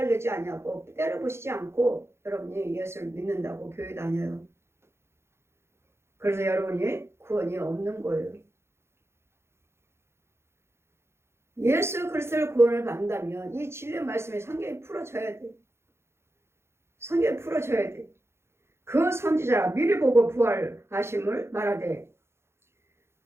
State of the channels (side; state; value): left; late; 0.12 ms